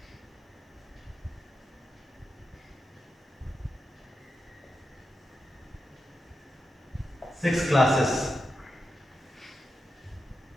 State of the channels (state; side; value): normal; both; correlation 0.88